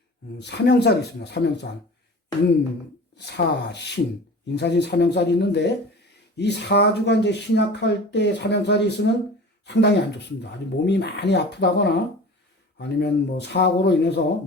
사명살이 있습니다. 사명살. 인사신. 인사신 사명살이 있는데 이 사주가 이제 신약할 때 사명살이 있으면 상당히 안 좋습니다. 아주 몸이 많이 아프다거나 아니면 뭐 사고로 인해서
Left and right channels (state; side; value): normal; both; correlation 0.39